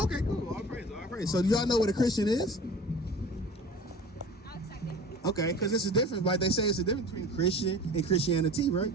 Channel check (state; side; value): normal; both; correlation 0.40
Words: Okay, cool. All praise, all praise. So do y'all know what a Christian is? Okay, because it's a difference. Like they say, it's a difference between Christian and Christianity, right?